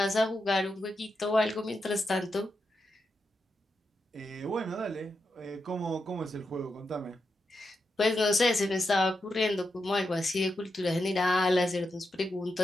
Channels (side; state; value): both; normal; correlation 0.86